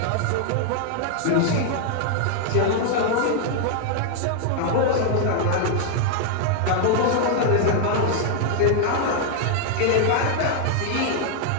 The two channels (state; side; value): different; both; correlation 0.00